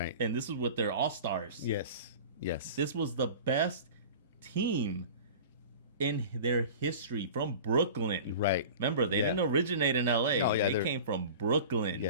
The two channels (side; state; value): both; inverted; correlation -0.37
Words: And this was with their all-stars. Yes. Yes. This was the best team in their history from Brooklyn. Right. Remember, they Yeah. didn't originate in LA. Oh, yeah, they they're- came from Brooklyn.